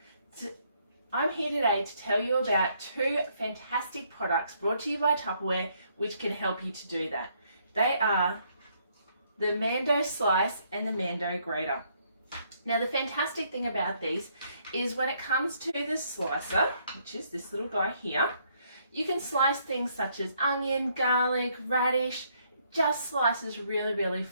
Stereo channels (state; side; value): inverted; both; correlation -0.70